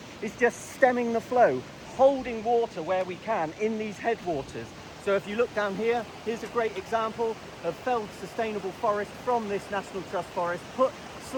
it's just stemming the flow, holding water where we can in these headwaters. So if you look down here, here's a great example of felled sustainable forest from this National Trust forest, put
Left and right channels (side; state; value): both; identical; correlation 1.00